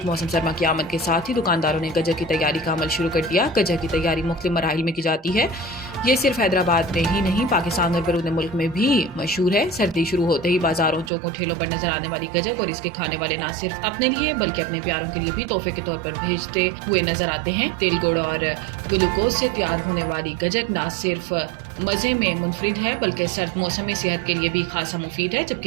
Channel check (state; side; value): drops out; left; at 11.1 s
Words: मौसम सरमा की आमद के साथ ही दुकानदारों ने गजक की तैयारी का अमल शुरू कर दिया। गजक की तैयारी मुख्तलिफ मराहिल में की जाती है। ये सिर्फ हैदराबाद में ही नहीं पाकिस्तान और बैरून मुल्क में भी मशहूर है। सर्दी शुरू होते ही बाजारों चौकों ठेलों पर नजर आने वाली गजक और इसके खाने वाले न सिर्फ अपने लिए बल्कि अपने प्यारों के लिए भी तोहफे के तौर पर भेजते हुए नजर आते हैं। तिल गुड़ और ग्लूकोज से तैयार होने वाली गजक न सिर्फ मजे में मुनफरिद है बल्कि सर्द मौसम में सेहत के लिए भी खासा मुफीद है।